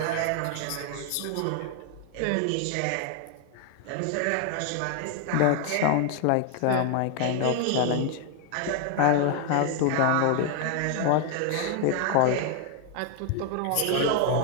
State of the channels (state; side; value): different; both; correlation 0.00